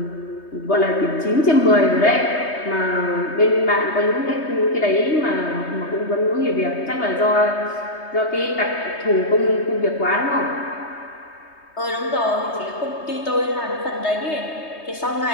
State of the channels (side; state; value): right; late; 3.2 ms